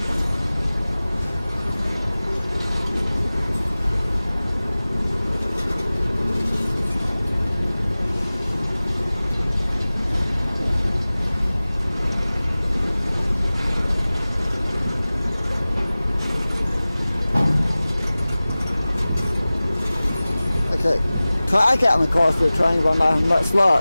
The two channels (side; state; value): both; inverted; correlation -0.98